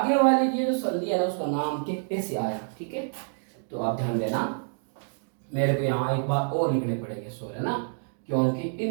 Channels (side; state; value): left; silent; digital silence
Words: वाले की जो संधि है ना उसका नाम कैसे आया, ठीक है। तो आप ध्यान देना, मेरे को यहाँ एक बार और लिखने पड़ेंगे सो है ना, क्योंकि